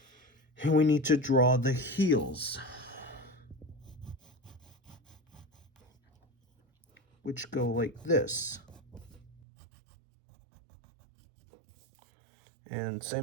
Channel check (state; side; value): drops out; left; at 9.4 s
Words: and we need to draw the heels, which go like this. And